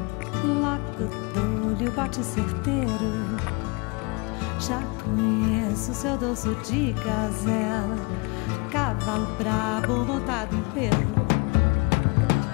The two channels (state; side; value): quieter; right; 28.1 dB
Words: Logo dou-lhe o bote certeiro. Já conheço seu dorso de gazela. Cavalo brabo montado em pelo.